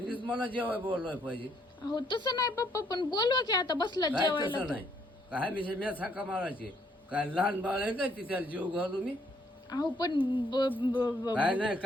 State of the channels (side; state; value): both; normal; correlation 0.69